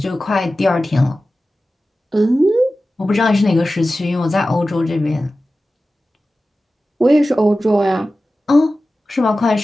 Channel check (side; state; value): both; normal; correlation 0.95